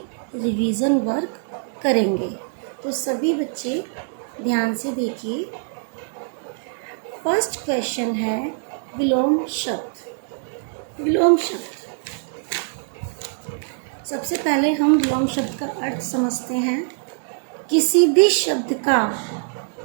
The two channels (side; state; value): left; silent; 63 dB below the other